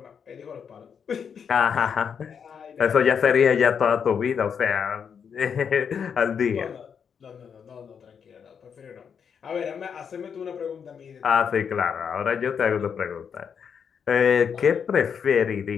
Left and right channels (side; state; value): right; quieter; 7.0 dB